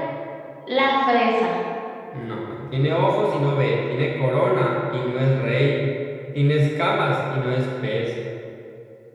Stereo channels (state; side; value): identical; both; correlation 1.00